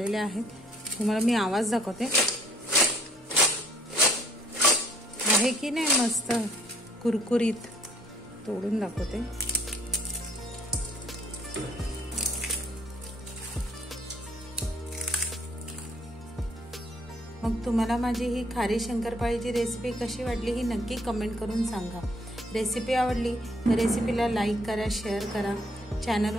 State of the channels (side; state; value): both; normal; correlation 0.61